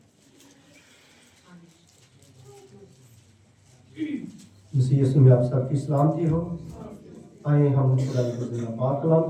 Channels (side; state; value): both; identical; correlation 1.00